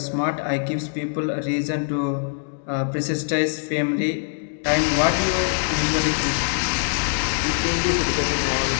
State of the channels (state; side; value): silent; right; digital silence